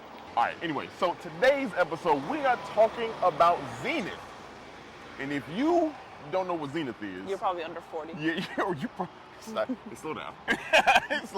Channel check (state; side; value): identical; both; correlation 1.00